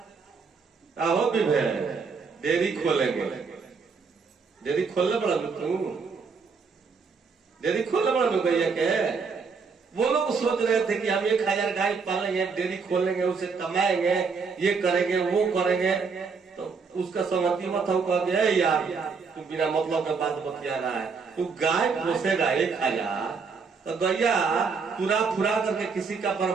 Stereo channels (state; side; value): quieter; left; 5.2 dB